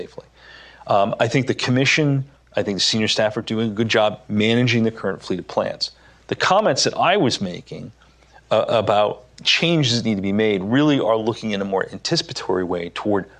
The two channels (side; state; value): both; identical; correlation 1.00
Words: I think the commission, I think the senior staff are doing a good job managing the current fleet of plants. The comments that I was making about changes that need to be made really are looking in a more anticipatory way toward